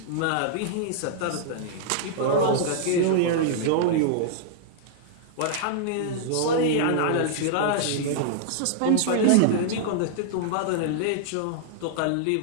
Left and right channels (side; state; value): both; different; correlation -0.01